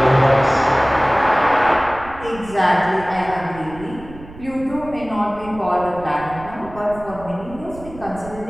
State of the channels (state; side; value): noise; right; rumble, 17 dB below the sound